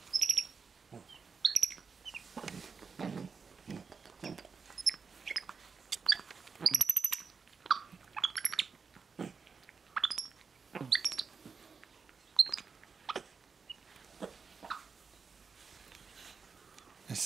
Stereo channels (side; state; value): left; quieter; 5.3 dB